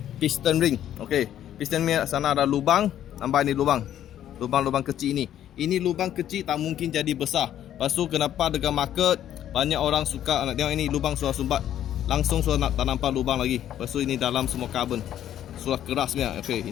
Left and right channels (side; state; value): right; quieter; 11.2 dB